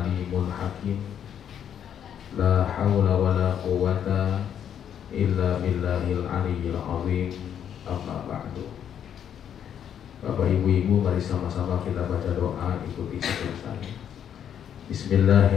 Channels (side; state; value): right; quieter; 9.1 dB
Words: hakim. La haula wa la quwwata illa billahil aliyyil azim. Amma ba'du. Bapak ibu-ibu, mari sama-sama kita baca doa, ikuti seperti saya.